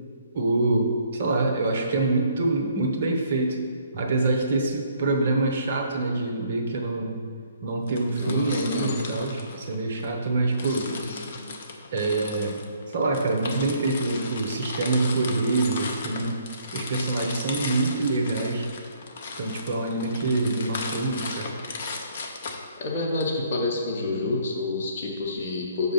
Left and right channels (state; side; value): inverted; both; correlation -0.64